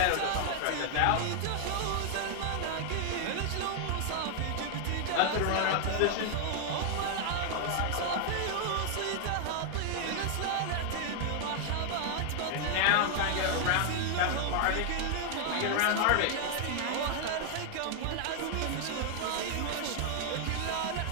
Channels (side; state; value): both; different; correlation 0.00